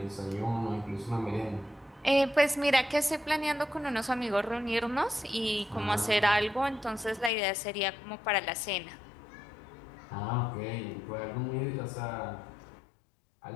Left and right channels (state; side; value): drops out; right; at 7.3 s